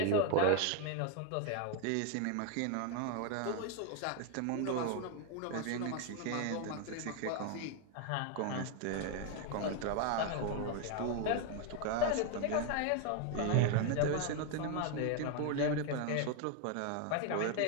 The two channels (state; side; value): different; both; correlation 0.01